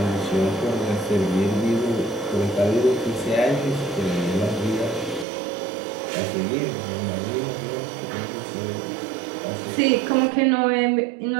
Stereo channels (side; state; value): left; drops out; at 5.2 s